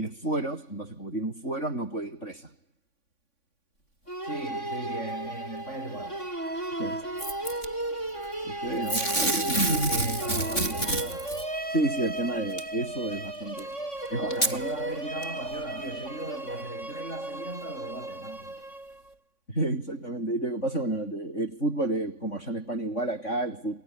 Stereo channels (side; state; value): right; late; 3.5 ms